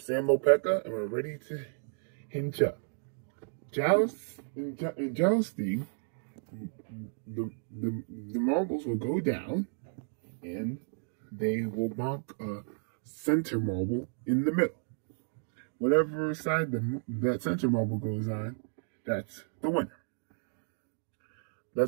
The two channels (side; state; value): left; silent; digital silence